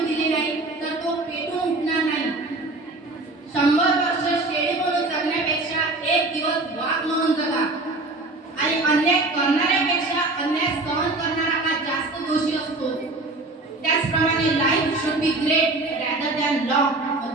दिली नाही तर तो पेटून उठणार नाही। 100 वर्ष शेळी म्हणून जगण्यापेक्षा एक दिवस वाघ म्हणून जगा आणि अन्याय करणाऱ्यापेक्षा अन्याय सहन करणारा हा जास्त दोषी असतो। त्याचप्रमाणे life should be great rather than long,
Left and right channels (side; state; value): left; quieter; 3.0 dB